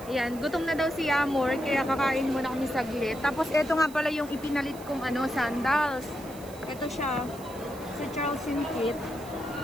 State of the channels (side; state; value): right; noise; hiss, 19 dB below the sound